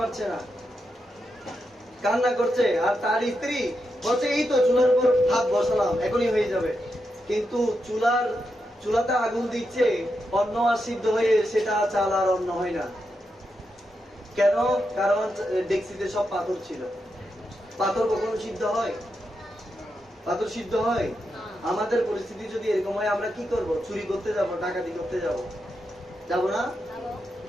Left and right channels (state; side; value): normal; both; correlation 0.85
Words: না, কান্না করছে, আর তার স্ত্রী বলছে এই তো চুলার উপর ভাত বসালাম, এখনই হয়ে যাবে। কিন্তু চুলার চুলাতে আগুন দিচ্ছে, অন্ন আর সিদ্ধ হয়ে সেটা চাল আর অন্ন হয় না। কেন? কারণ ডেক্সিতে সব পাথর ছিল। পাথর কখনো সিদ্ধ হয়? পাথর সিদ্ধ হয়? আমাদের পরিস্থিতি যদি এরকম হয়, আমরা কি করব? চুরি করতে যাব, ডাকাতি করতে যাব, যাব না? যাবো